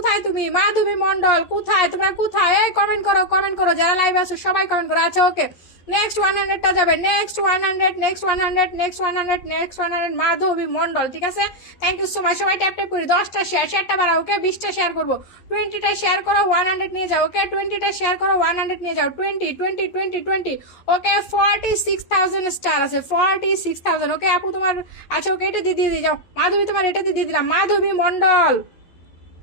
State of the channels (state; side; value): late; right; 11 ms